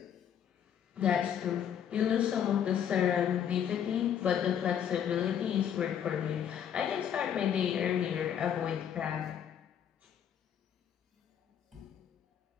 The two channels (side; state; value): right; quieter; 9.0 dB